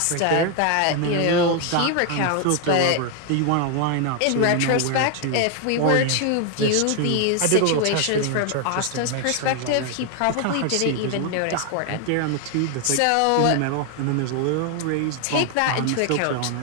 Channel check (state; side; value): different; both; correlation 0.01